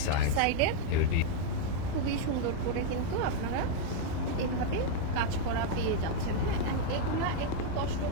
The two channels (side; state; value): both; different; correlation 0.00